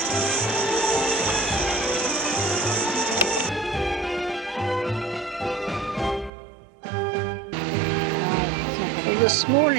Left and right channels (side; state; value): left; drops out; at 6.3 s